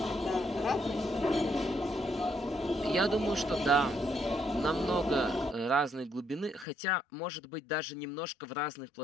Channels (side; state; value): right; drops out; at 6.7 s